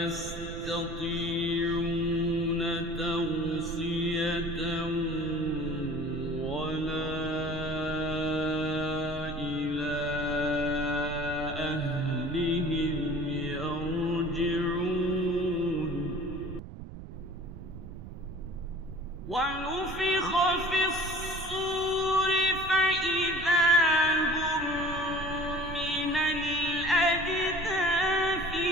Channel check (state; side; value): noise; right; rumble, 12 dB below the sound